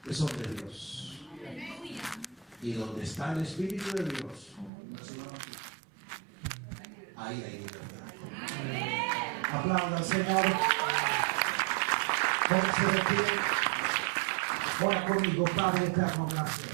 que son de Dios. Y donde está el Espíritu de Dios, ahí hay libertad. Aplauda al Señor. Póngase de pie. Ora conmigo, Padre eterno,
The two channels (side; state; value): left; drops out; at 4.7 s